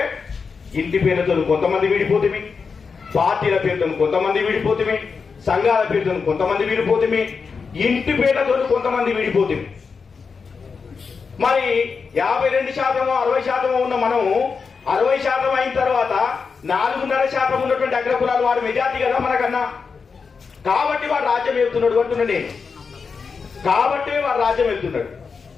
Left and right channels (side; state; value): right; quieter; 5.3 dB